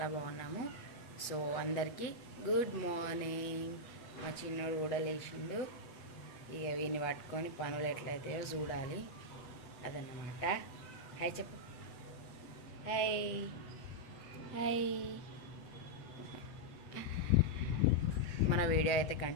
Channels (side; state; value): right; late; 8.1 ms